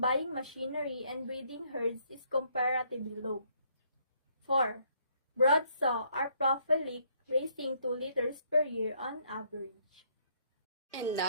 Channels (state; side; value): inverted; both; correlation -0.68